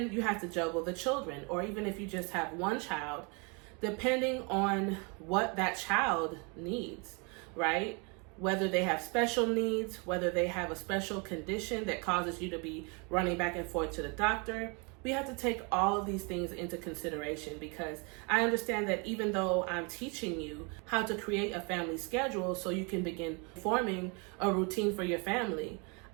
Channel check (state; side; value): quieter; left; 32.5 dB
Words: you have to juggle the children, or even if you just have one child, depending on what that child needs, right? Whether they have special needs, whether they have a special condition that causes you to be running back and forth to the doctor. We have to take all of these things into consideration, because I understand that even though I'm teaching you how to create a family schedule so you can begin forming a routine for your family,